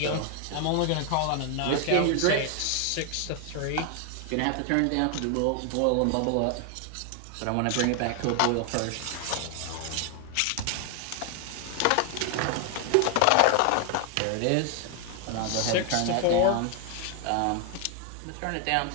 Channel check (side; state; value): both; different; correlation 0.00